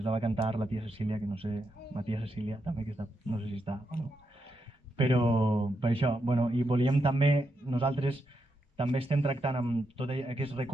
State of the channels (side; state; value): both; normal; correlation 0.83